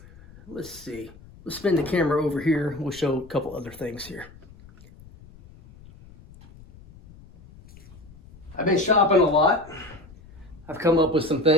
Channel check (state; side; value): noise; left; rumble, 22 dB below the sound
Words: Let's see. Let's spin the camera over here. We'll show a couple other things here. I've been shopping a lot. I've come up with some